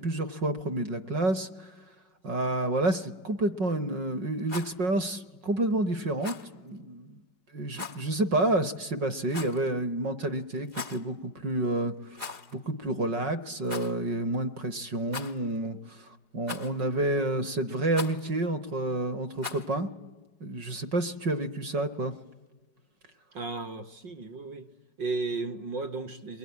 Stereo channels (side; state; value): left; late; 5.4 ms